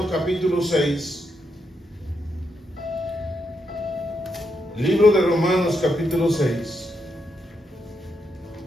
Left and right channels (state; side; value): normal; both; correlation 0.81